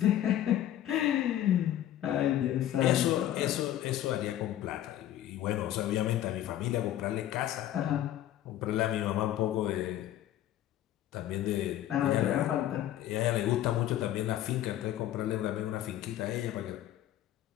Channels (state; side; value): quieter; right; 12.4 dB